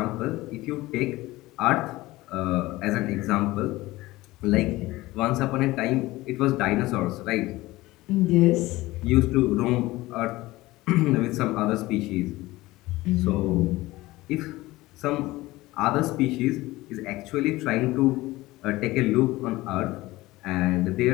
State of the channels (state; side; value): quieter; right; 18.9 dB